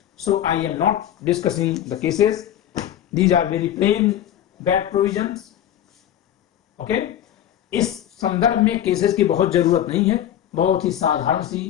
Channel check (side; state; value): right; quieter; 11.0 dB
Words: so I am not discussing the cases. These are very plain bad provisions. Okay, इस संदर्भ में cases की बहुत जरूरत नहीं है, बहुत ही साधारण